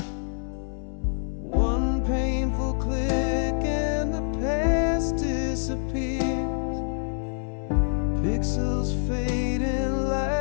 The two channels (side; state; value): right; silent; 61 dB below the other